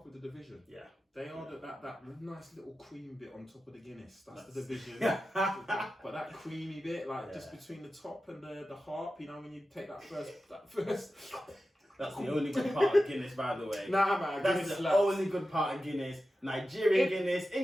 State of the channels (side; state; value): both; normal; correlation 0.93